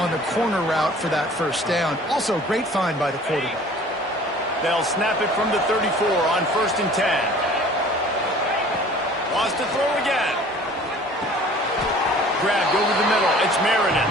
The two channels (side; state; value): both; normal; correlation 0.48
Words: the corner route for that first down. Also, great find by the quarterback. They'll snap it from the 34 on 1st and 10. Wants to throw again. Grabbed over the middle. It's Marion.